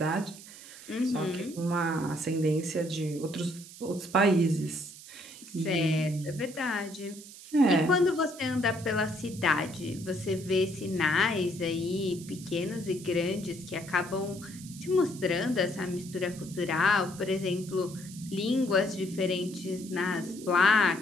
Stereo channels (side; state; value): right; noise; hiss, 17 dB below the sound